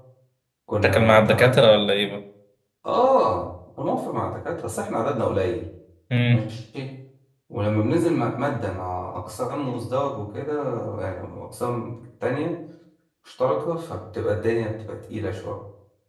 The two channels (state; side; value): identical; both; correlation 1.00